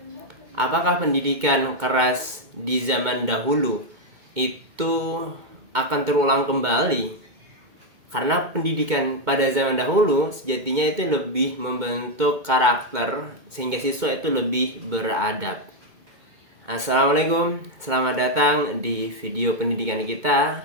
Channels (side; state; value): left; late; 2.2 ms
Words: apakah pendidikan keras di zaman dahulu itu akan terulang kembali? Karena pendidikan pada zaman dahulu sejatinya itu lebih membentuk karakter sehingga siswa itu lebih beradab. Assalamualaikum, selamat datang di video pendidikan kita.